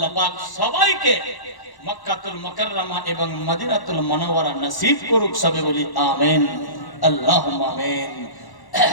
পাক সবাইকে মক্কাতুল মুকাররমা এবং মদিনাতুল মুনাওয়ারা নসিব করুক, সবে বলি আমিন আল্লাহুম্মা আমিন।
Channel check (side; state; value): right; late; 1.1 ms